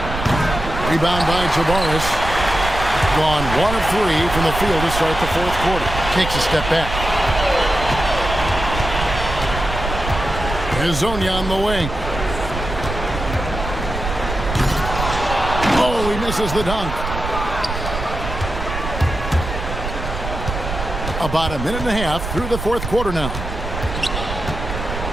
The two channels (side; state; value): right; noise; rumble, 6 dB below the sound